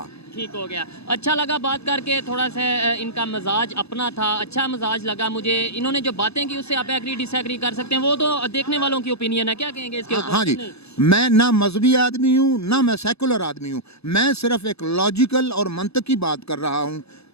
ٹھیک ہو گیا، اچھا لگا بات کر کے، تھوڑا سا ان کا مزاج اپنا تھا، اچھا مزاج لگا مجھے۔ انہوں نے جو باتیں کی اس سے آپ ایگری ڈس ایگری کر سکتے ہیں، وہ تو دیکھنے والوں کی اوپینین ہے، کیا کہیں گے اس کے اوپر؟ ہاں جی، میں نہ مذہبی آدمی ہوں نہ میں سیکولر آدمی ہوں، میں صرف ایک لاجیکل اور منطقی بات کر رہا ہوں۔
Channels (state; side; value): late; right; 0.79 ms